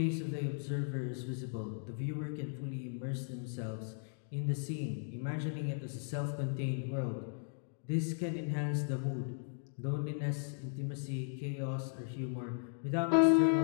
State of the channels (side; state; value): right; silent; digital silence